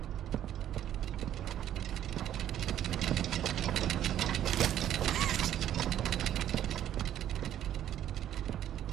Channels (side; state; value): left; quieter; 11.2 dB